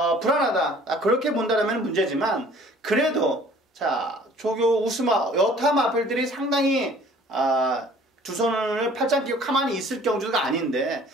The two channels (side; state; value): both; normal; correlation 0.53